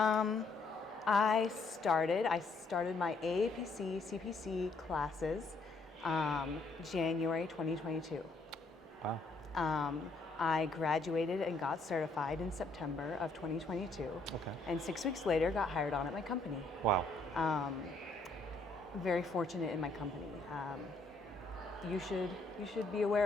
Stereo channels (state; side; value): quieter; right; 3.4 dB